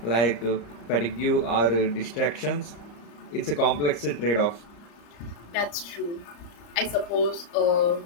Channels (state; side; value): late; right; 34 ms